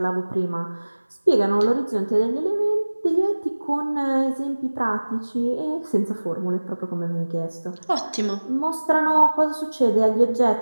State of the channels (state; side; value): inverted; both; correlation -1.00